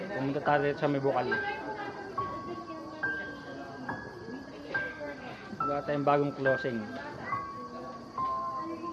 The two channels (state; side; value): identical; both; correlation 1.00